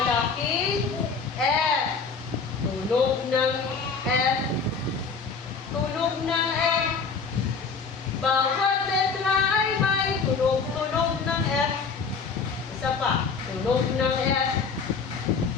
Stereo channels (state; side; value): quieter; right; 5.1 dB